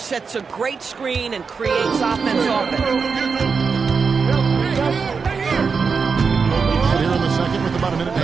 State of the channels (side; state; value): left; quieter; 5.3 dB